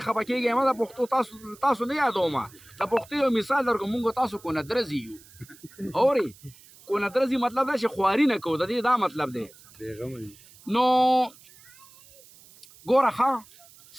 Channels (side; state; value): right; noise; hiss, 24 dB below the sound